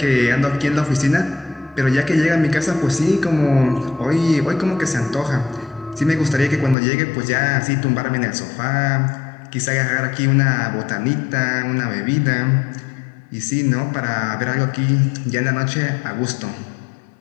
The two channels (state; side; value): drops out; right; at 6.8 s